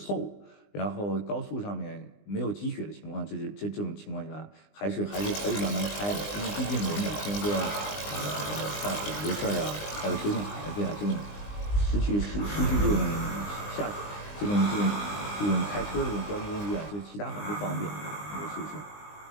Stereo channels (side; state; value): right; late; 20 ms